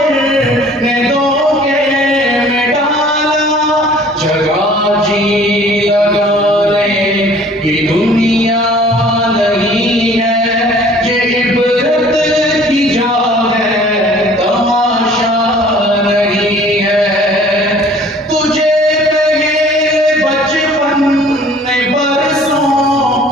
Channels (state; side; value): normal; both; correlation 0.52